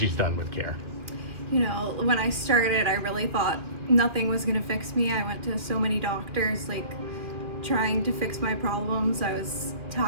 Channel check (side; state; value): left; late; 2.6 ms